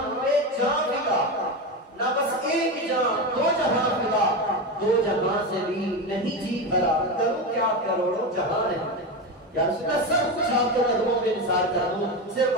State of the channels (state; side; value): normal; both; correlation 0.18